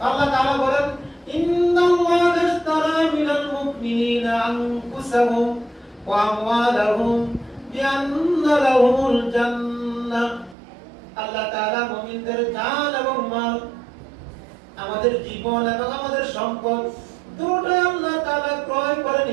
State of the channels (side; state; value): left; drops out; at 10.6 s